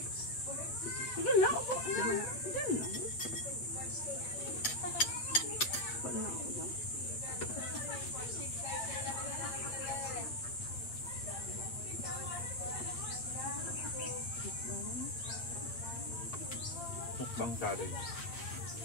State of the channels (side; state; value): right; late; 8.4 ms